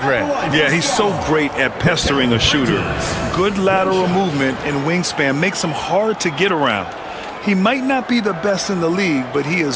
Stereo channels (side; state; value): both; identical; correlation 1.00